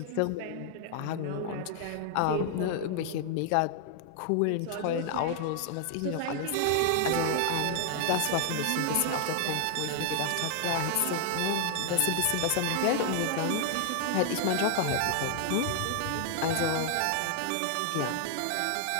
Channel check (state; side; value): different; both; correlation 0.00